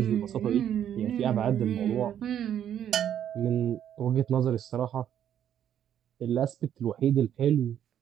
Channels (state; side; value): quieter; left; 10.0 dB